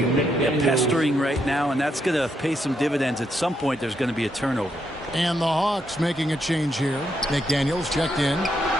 Yeah, pestering right now, and that's going to pay some dividends. At some point, there's going to be a turnover. And the Hawks making a change here. McDaniels checked in.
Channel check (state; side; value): normal; both; correlation 0.78